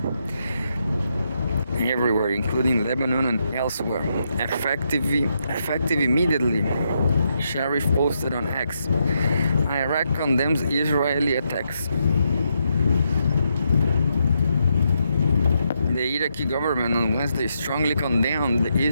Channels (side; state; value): both; inverted; correlation -0.80